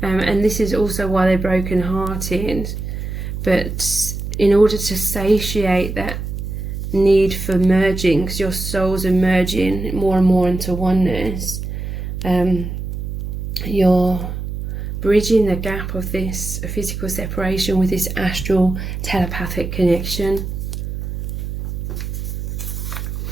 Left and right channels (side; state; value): right; noise; hum, 5 dB below the sound